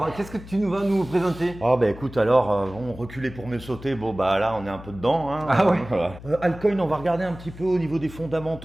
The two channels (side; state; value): left; noise; hum, 16 dB below the sound